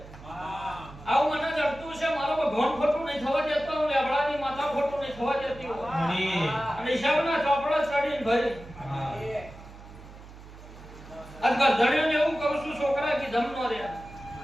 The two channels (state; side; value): noise; right; hum, 17 dB below the sound